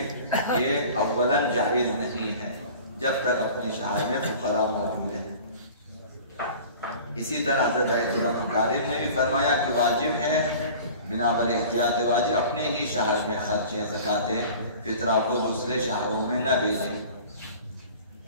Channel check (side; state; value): both; inverted; correlation -0.42